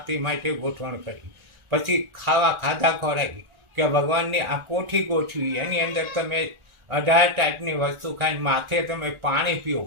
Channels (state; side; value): late; left; 1.4 ms